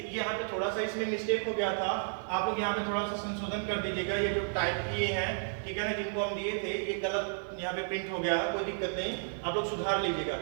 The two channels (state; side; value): silent; left; digital silence